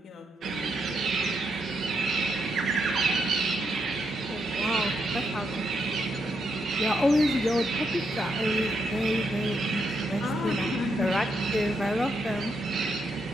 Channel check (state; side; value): normal; both; correlation 0.80